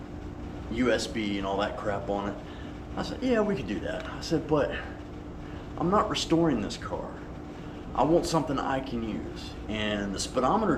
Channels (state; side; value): identical; both; correlation 1.00